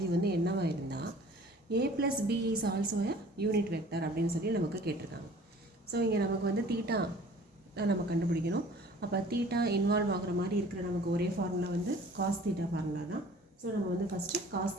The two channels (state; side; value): normal; both; correlation 0.49